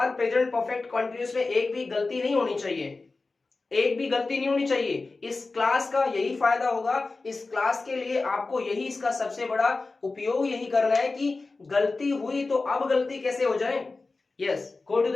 प्रेजेंट परफेक्ट कंटिन्यूअस में एक भी गलती नहीं होनी चाहिए। एक भी गलती नहीं होनी चाहिए। इस क्लास का यही फायदा होगा, इस क्लास के लिए आपको यही इसका सबसे बड़ा उपयोग यही करना है कि गलती हुई तो अब गलती कैसे हो जाए। Yes, go to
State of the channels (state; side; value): quieter; right; 3.7 dB